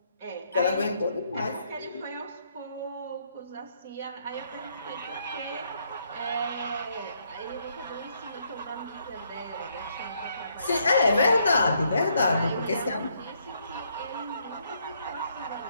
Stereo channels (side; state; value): both; inverted; correlation -0.72